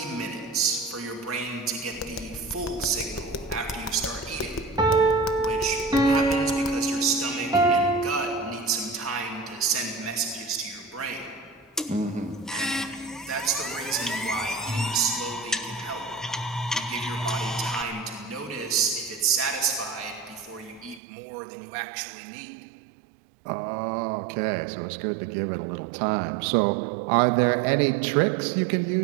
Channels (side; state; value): left; drops out; at 21.0 s